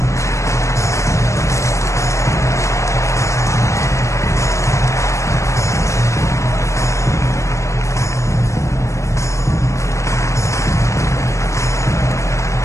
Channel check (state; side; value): late; right; 0.15 ms